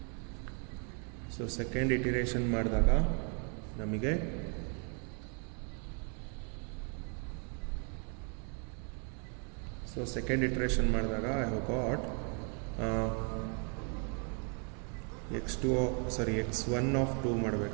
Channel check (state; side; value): quieter; left; 39.3 dB